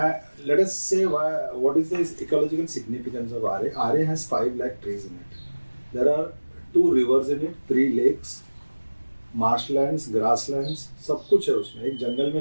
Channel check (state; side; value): inverted; both; correlation -1.00